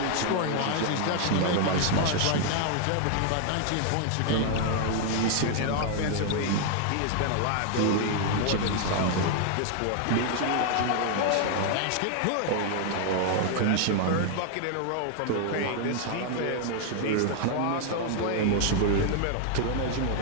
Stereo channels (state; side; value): different; both; correlation 0.00